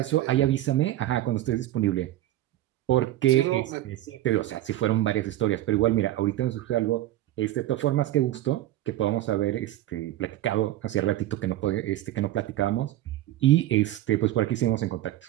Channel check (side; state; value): left; quieter; 14.3 dB